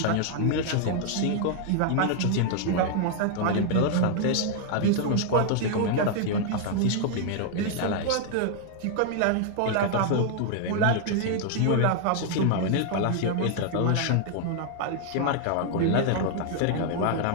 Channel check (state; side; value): different; both; correlation 0.00